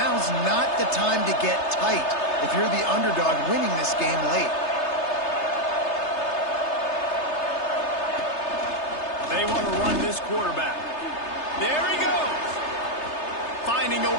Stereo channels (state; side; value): late; right; 3.3 ms